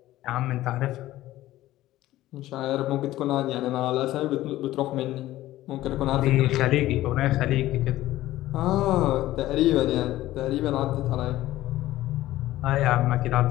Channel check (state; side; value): quieter; right; 15.4 dB